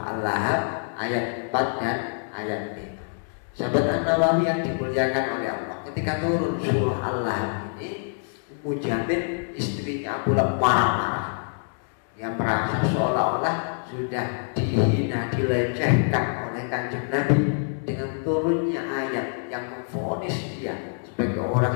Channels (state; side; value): silent; right; digital silence